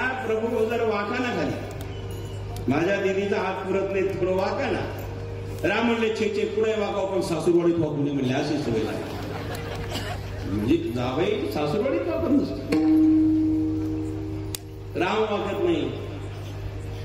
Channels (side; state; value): both; identical; correlation 1.00